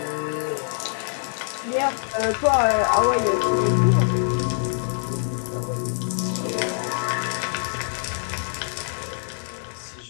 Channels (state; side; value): silent; right; digital silence